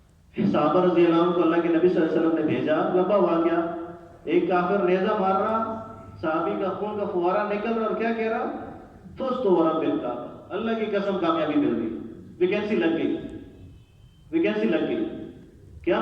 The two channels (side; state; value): both; identical; correlation 1.00